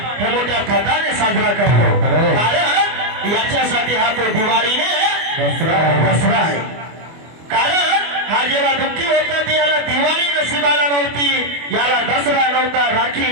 हे मोठ्या थाटाने साजरा करतो. कारण याच्यासाठी हा तो दिवाळीने दसरा आहे. कारण हा जेव्हा दुःखी होता ते याला दिवाळी नशिबाला नव्हती, याला दसरा नव्हता,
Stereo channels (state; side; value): late; left; 24 ms